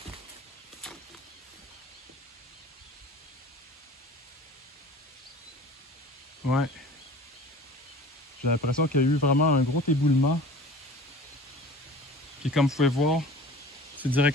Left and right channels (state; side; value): normal; both; correlation 0.42